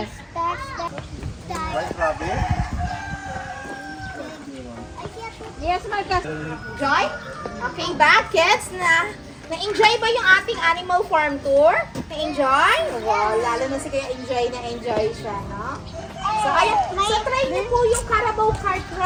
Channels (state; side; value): identical; both; correlation 1.00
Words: That's the. Right, rabbit? Yes, Marcus. Joy? Okay ba, kids? Na-enjoy ba yung ating animal farm tour? Na-enjoy? Wow, lalo na si Kaya enjoy siya, no? So, try niyo po yung Carabao Cart